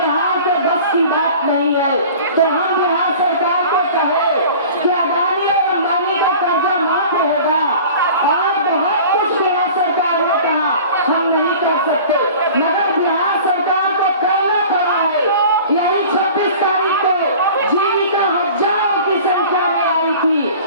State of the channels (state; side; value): inverted; both; correlation -0.42